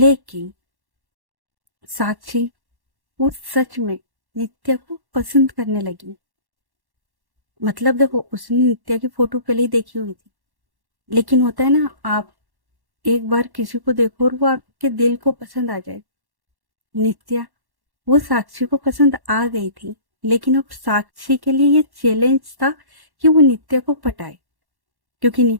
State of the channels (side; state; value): left; late; 1.1 ms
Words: साक्षी वो सच में नित्या को पसंद करने लगी। मतलब देखो, उसने नित्या की फोटो पहले ही देखी हुई थी, लेकिन होता है ना, आप एक बार किसी को देखो और वो आपके दिल को पसंद आ जाए। नित्या वो साक्षी को पसंद आ गई थी, लेकिन अब साक्षी के लिए ये चैलेंज था कि वो नित्या को पटाए, क्योंकि